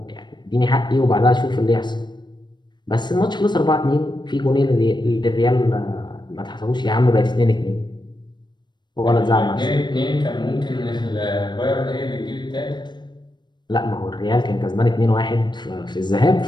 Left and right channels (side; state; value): right; late; 0.22 ms